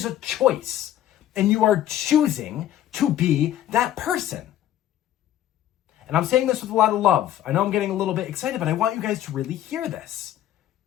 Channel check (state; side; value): quieter; right; 12.1 dB